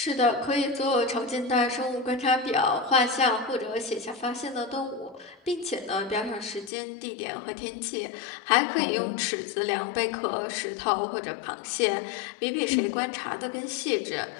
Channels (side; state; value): right; drops out; at 6.7 s